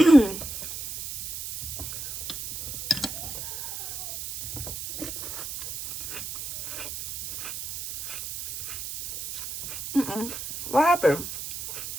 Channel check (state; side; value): noise; right; hiss, 7 dB below the sound